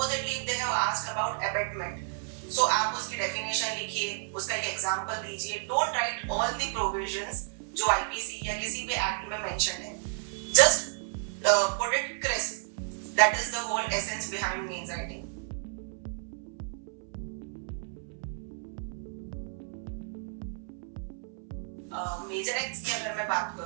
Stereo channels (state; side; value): silent; left; 57 dB below the other